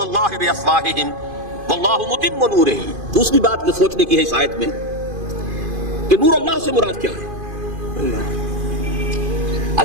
بافواہہم واللہ متم نورہ۔ دوسری بات جو سوچنے کی ہے اس آیت میں کہ نور اللہ سے مراد کیا ہے؟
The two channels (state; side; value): late; left; 2.5 ms